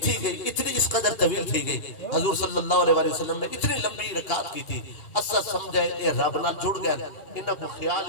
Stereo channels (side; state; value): right; late; 2.8 ms